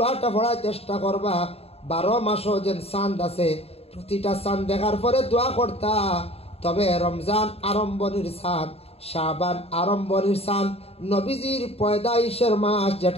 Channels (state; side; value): late; right; 0.29 ms